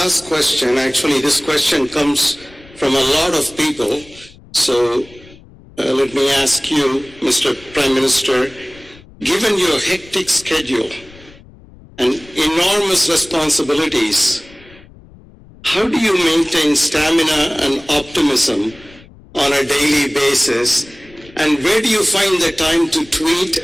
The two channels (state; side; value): noise; left; rumble, 23 dB below the sound